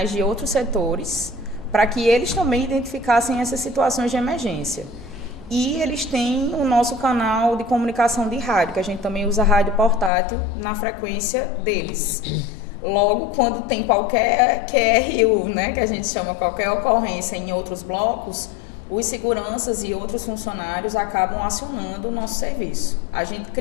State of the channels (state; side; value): drops out; right; at 10.1 s